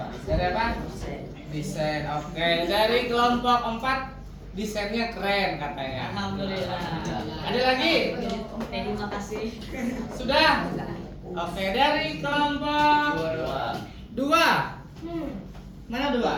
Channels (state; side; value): identical; both; correlation 1.00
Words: Dari apa? Desain. Oke. Dari kelompok 4 desainnya keren katanya. Alhamdulillah. Ada lagi? Terima kasih. Sudah? Oke. Dari kelompok 2. Mana 2?